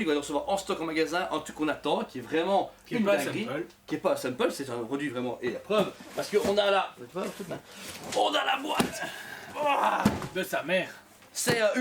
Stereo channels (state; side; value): identical; both; correlation 1.00